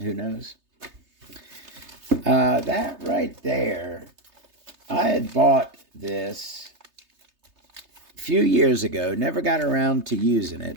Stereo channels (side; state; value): left; late; 3.3 ms